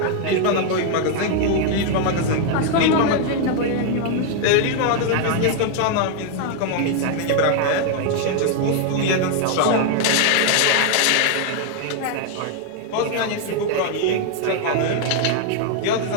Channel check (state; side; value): different; both; correlation 0.00